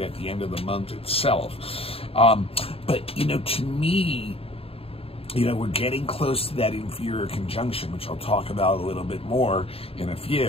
at the end of the month itself. But, you know, to me, you know, we're getting close to that inferior conjunction, which I'll talk about a little bit more in a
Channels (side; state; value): right; late; 0.28 ms